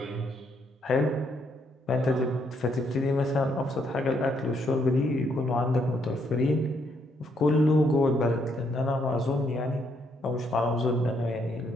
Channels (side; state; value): both; normal; correlation 0.73